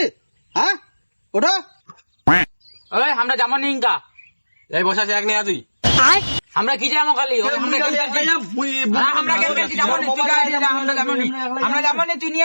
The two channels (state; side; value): inverted; both; correlation -1.00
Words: ওটা ওই আমরা যাবো নি ইনকা এই বসে আছে এক নিয়ে তুই আমরা কি যাবো খালি আমরা গেম খেলছি যাবো নি তুই গাড়ি যা আমরা যাবো নি তুই